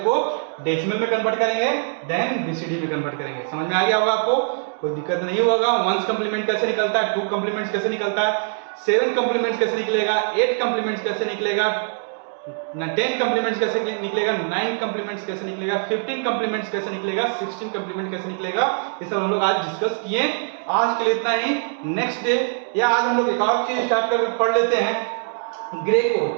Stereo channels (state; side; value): silent; left; 64 dB below the other